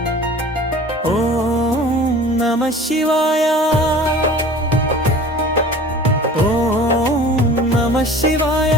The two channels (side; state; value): both; normal; correlation 0.43